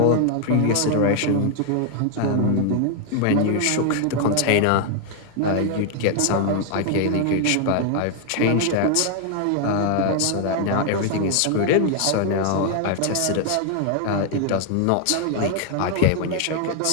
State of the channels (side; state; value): both; different; correlation 0.00